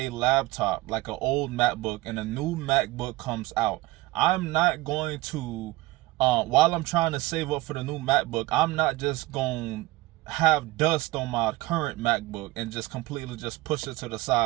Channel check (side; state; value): left; quieter; 19.6 dB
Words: laptop, like an old MacBook, and a new MacBook comes out, I'm not going to, while I'm trying to save up for the new MacBook, I'm not just going to have dust on my current MacBook and just completely just push it to the